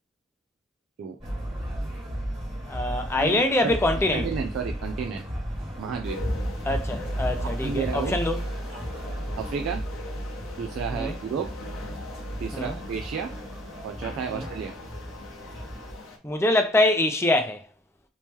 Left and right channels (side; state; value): both; normal; correlation 0.58